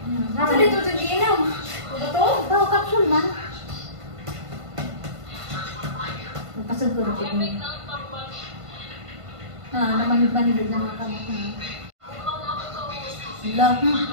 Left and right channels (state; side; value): late; left; 1.5 ms